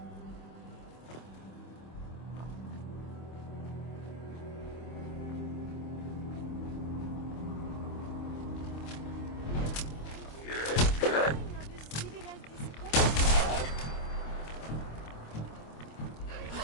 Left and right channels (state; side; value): late; right; 25 ms